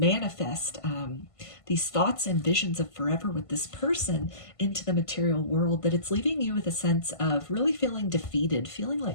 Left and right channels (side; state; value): right; late; 1.5 ms